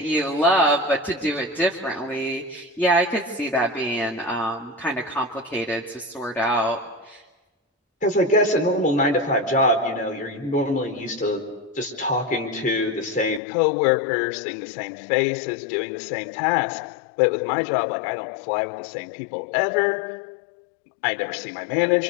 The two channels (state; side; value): drops out; right; at 13.4 s